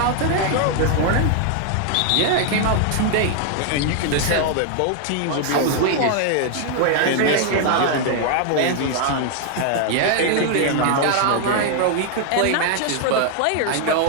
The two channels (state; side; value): different; both; correlation 0.00